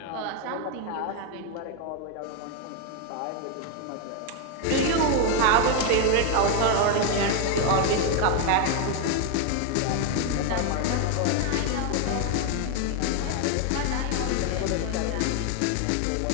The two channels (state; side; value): different; both; correlation 0.01